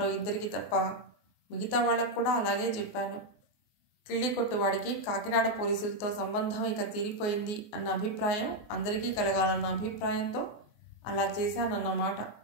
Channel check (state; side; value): late; right; 24 ms